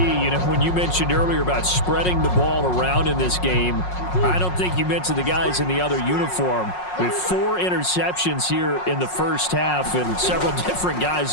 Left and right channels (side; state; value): right; late; 5.5 ms